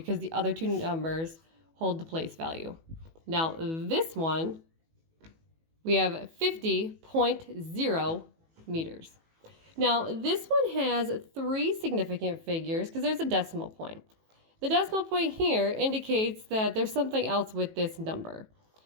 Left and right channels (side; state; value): left; late; 18 ms